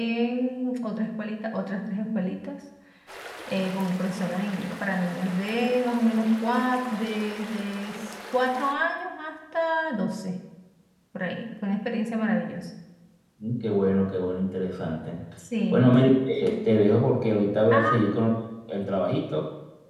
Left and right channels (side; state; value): both; identical; correlation 1.00